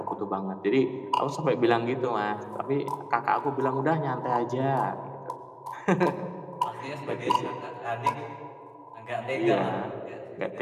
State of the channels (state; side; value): identical; both; correlation 1.00